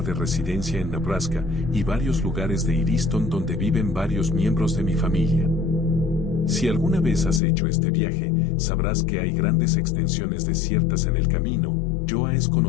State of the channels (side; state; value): right; drops out; at 7.4 s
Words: de residencia en Nebraska y varios lugares de Easton donde viven varios miembros de mi familia. Si alguna vez has hecho este viaje, sabrás que hay grandes extensiones desiertas en el camino. Iowa es